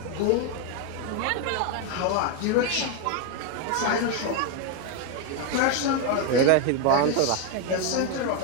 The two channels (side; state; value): both; different; correlation 0.01